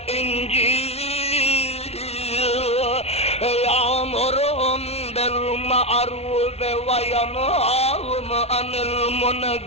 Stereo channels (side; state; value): right; late; 0.30 ms